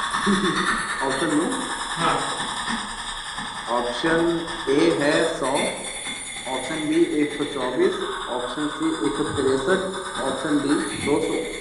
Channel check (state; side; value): identical; both; correlation 1.00